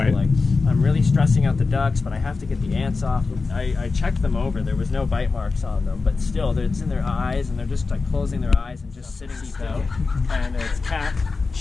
So, like, I'm really stressing out the ducks, but I have to get the ants off. I checked them over. There was no bite marks on them, but still, it's in their eyes, and they're just like closing their eyes and just sitting still. And it's cat,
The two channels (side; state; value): right; quieter; 4.2 dB